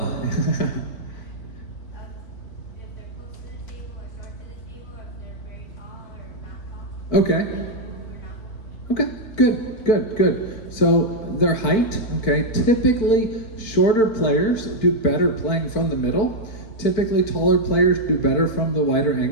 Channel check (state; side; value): late; right; 4.5 ms